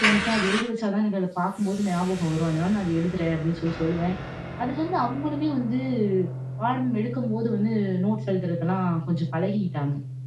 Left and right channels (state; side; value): identical; both; correlation 1.00